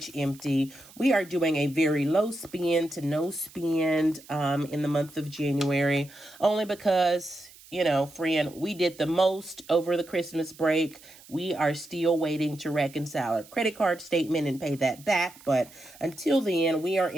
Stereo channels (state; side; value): noise; right; hiss, 22 dB below the sound